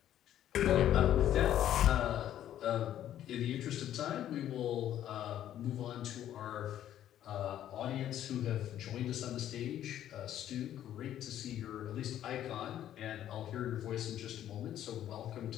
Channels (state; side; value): quieter; right; 11.5 dB